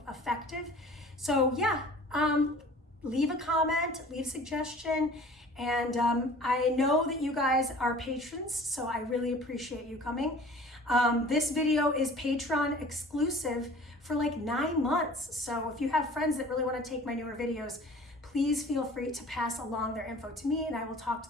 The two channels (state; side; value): normal; both; correlation 0.46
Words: effective. So yeah, leave a comment, leave a suggestion, and I know that you guys are patrons, so I really appreciate you coming. This video is Patreon exclusive for like 9 months. So if you have friends that really want to take my newer videos, please feel free to pass along their info to me and I will talk to